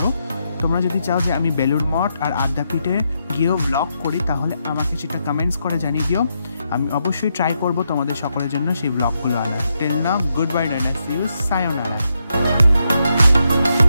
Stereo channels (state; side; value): inverted; both; correlation -0.82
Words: তোমরা যদি চাও যে আমি বেলুড় মঠ আর আদ্যাপীঠে গিয়েও ব্লগ করি, তাহলে আমাকে সেটা কমেন্টস করে জানিয়ে দিও। আমি অবশ্যই ট্রাই করব তোমাদের সকলের জন্য সেই ব্লগগুলো আনার। Till now, good bye, tata, see you, সায়োনারা।